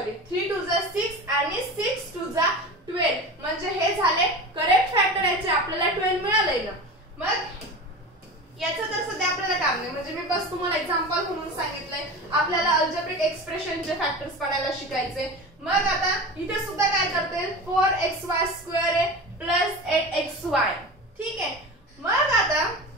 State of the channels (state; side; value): normal; both; correlation 0.30